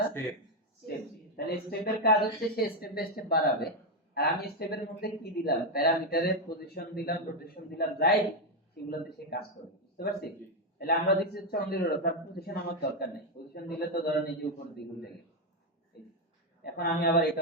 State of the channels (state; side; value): normal; both; correlation 0.04